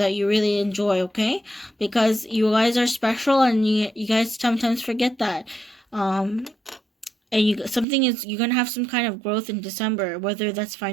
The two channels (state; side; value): drops out; left; at 7.9 s